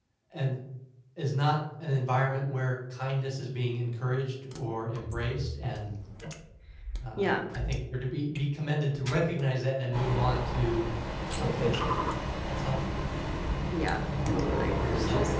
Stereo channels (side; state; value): both; identical; correlation 1.00